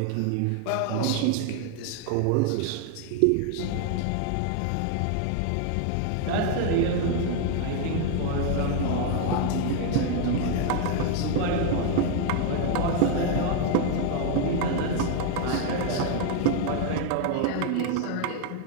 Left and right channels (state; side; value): different; both; correlation 0.00